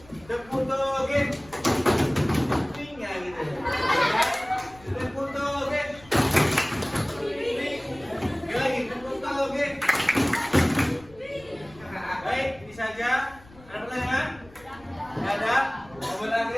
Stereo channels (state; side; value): noise; left; rumble, 23 dB below the sound